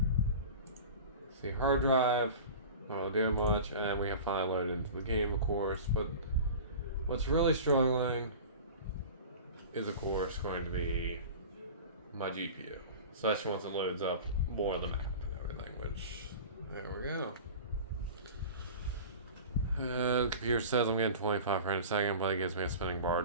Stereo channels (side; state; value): both; inverted; correlation -0.35